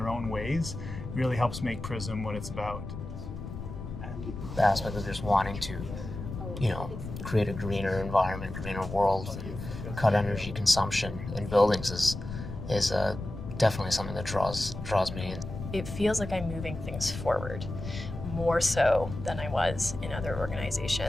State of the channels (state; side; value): noise; left; rumble, 8 dB below the sound